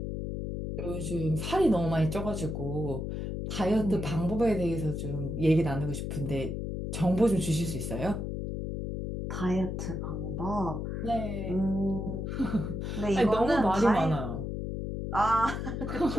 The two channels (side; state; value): left; noise; hum, 4 dB below the sound